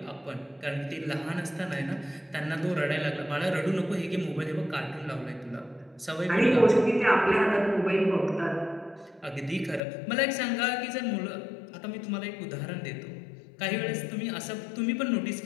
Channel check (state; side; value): drops out; right; at 9.8 s